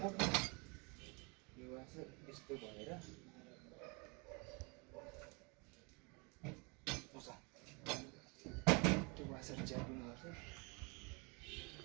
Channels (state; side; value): quieter; left; 30.4 dB